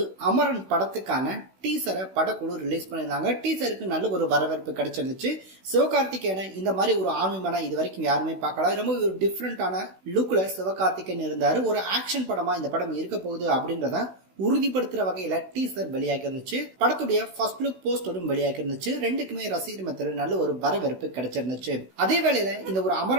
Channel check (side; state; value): left; late; 16 ms